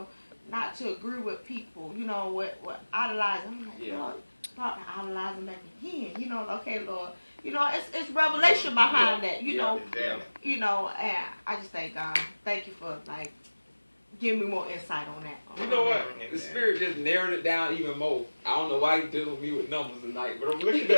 not to agree with people, you know, what idolizing. I'm like, Lord, start idolizing back again, you know, okay, Lord, you know, it's revelation behind that, you know, you know, and I just thank God, thank you for like giving me more insight on that. You know what? The Spirit just narrowed it down even more. I don't know why He dealing with me with numbers tonight, but I'm looking at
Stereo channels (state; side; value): inverted; both; correlation -1.00